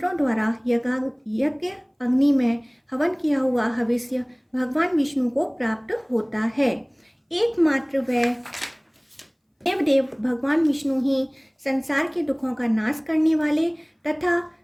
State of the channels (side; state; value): both; identical; correlation 1.00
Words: द्वारा यज्ञ अग्नि में हवन किया हुआ हविष्य भगवान विष्णु को प्राप्त होता है। एकमात्र वह देव भगवान विष्णु ही संसार के दुखों का नाश करने वाले तथा